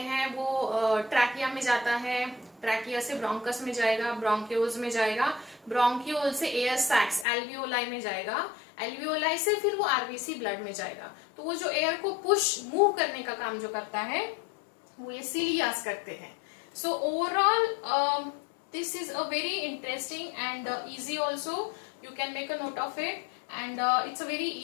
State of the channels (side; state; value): right; drops out; at 7.2 s